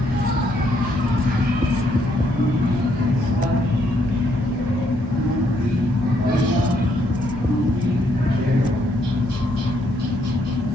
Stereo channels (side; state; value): both; normal; correlation 0.72